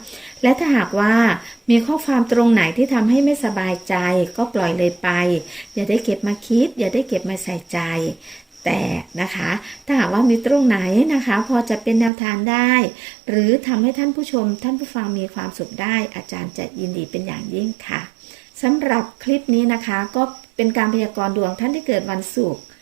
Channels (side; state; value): left; drops out; at 12.1 s